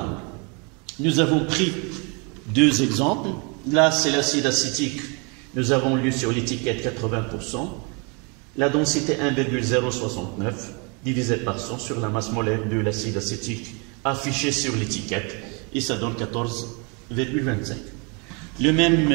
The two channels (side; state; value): left; quieter; 32.9 dB